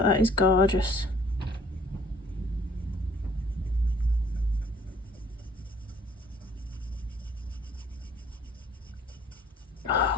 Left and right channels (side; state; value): both; normal; correlation 0.58